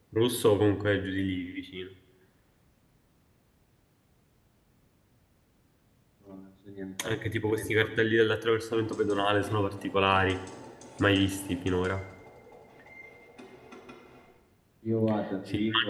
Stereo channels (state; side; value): identical; both; correlation 1.00